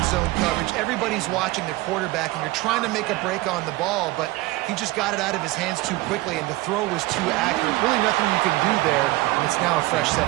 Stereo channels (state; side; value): quieter; left; 19.7 dB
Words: zone coverage. Everybody's watching the quarterback, and you're trying to make a break on the ball, but he just got it out of his hands too quickly, and the throw was too accurate. Really nothing you can do there, and it's now a fresh set